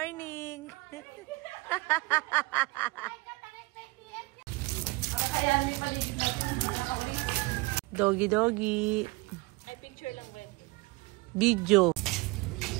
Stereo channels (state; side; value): quieter; left; 23.8 dB